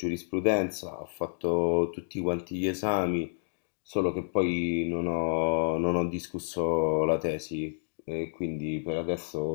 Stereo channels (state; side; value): silent; right; digital silence